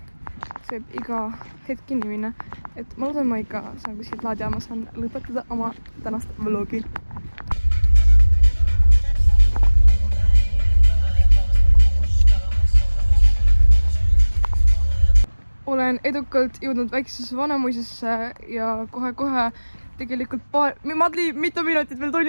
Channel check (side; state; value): both; inverted; correlation -1.00